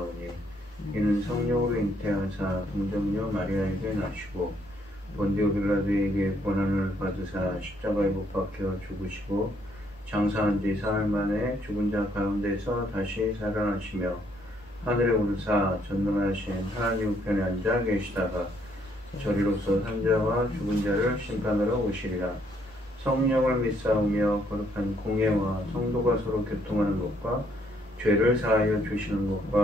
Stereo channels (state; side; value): normal; both; correlation 0.69